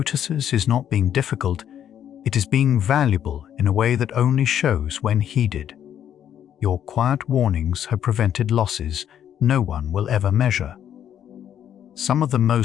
is not being difficult, it is being valuable in a way that only shows when heeded. Your quiet warnings have prevented losses no one will ever measure. Some of the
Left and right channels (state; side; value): quieter; right; 9.9 dB